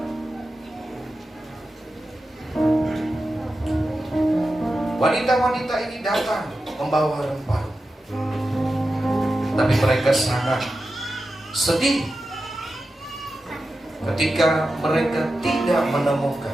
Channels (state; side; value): normal; both; correlation 0.92